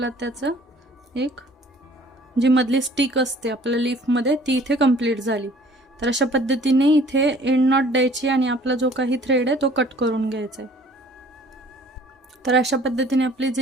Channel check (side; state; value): both; normal; correlation 0.53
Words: त्याचं एक जी मधली स्टिक असते आपल्या लीफमध्ये ती इथे कंप्लीट झाली। तर अशा पद्धतीने इथे एंड नॉट द्यायची आणि आपला जो काही थ्रेड आहे तो कट करून घ्यायचा आहे। तर अशा पद्धतीने आपली